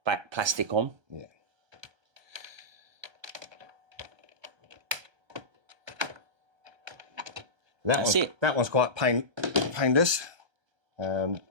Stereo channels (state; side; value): late; left; 1.3 ms